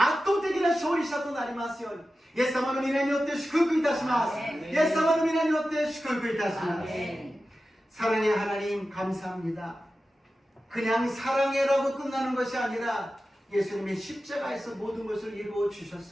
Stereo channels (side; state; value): both; normal; correlation 0.94